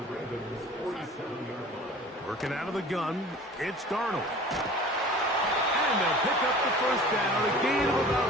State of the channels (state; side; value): normal; both; correlation 0.43